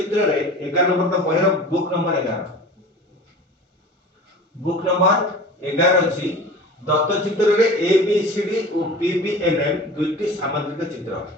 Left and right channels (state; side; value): normal; both; correlation 0.38